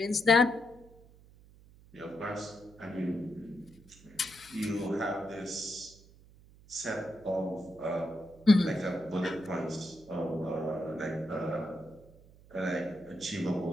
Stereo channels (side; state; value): right; noise; hum, 24 dB below the sound